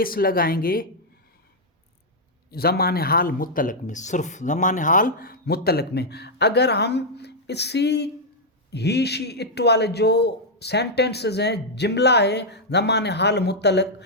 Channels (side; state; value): both; normal; correlation -0.04